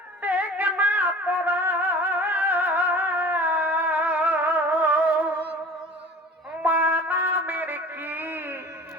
দেখ না তোরা, মা নামের কি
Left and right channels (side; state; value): both; normal; correlation 0.42